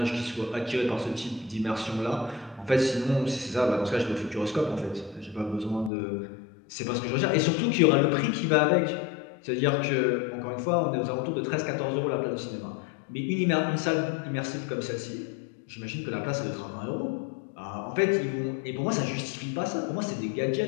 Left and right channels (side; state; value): right; drops out; at 5.9 s